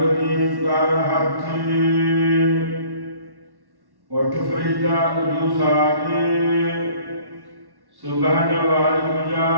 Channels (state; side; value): late; left; 1.1 ms